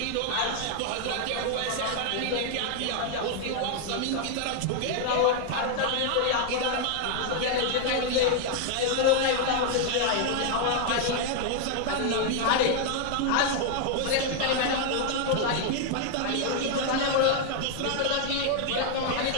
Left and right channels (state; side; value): different; both; correlation 0.00